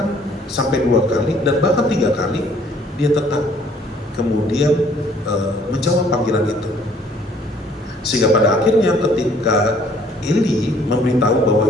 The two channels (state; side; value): normal; both; correlation 0.60